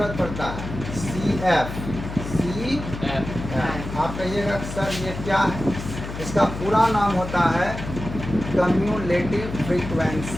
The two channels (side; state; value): left; noise; hum, 8 dB below the sound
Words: पड़ता है। CF आप कहिएगा सर ये क्या है? इसका पूरा नाम होता है cumulative